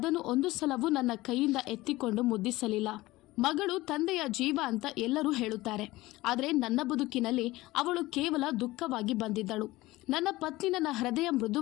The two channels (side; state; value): right; quieter; 18.8 dB